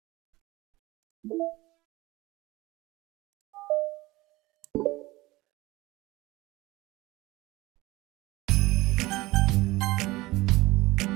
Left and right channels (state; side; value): quieter; left; 20.0 dB